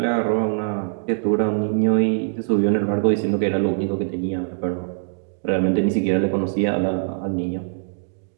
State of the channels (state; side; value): silent; left; digital silence